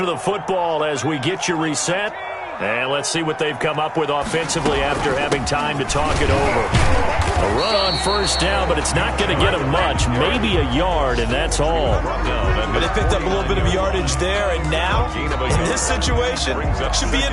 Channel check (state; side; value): identical; both; correlation 1.00